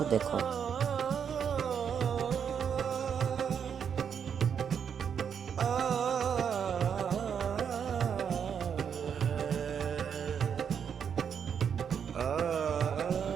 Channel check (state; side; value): quieter; left; 7.5 dB